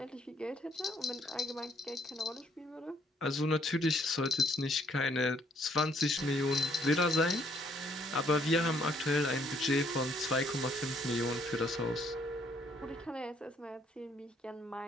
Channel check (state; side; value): normal; both; correlation 0.66